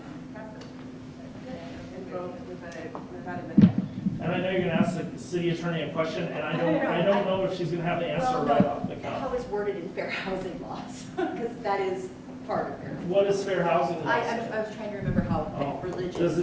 practice. And both without a minute. And I know you're gonna ask the city attorney a question, and I don't know if she's gonna have the answer right off the cuff. How it's worded in fair housing laws, because that is part of fair. What is fair housing law? I was trying to remember how religious. Does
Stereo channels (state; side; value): identical; both; correlation 1.00